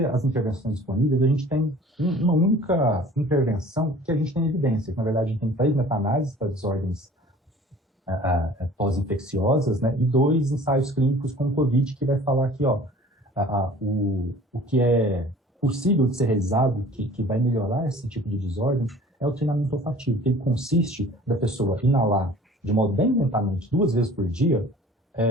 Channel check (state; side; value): normal; both; correlation 0.47